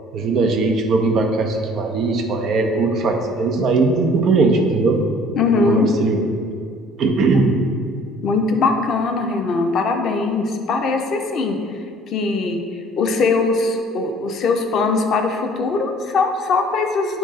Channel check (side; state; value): both; normal; correlation 0.54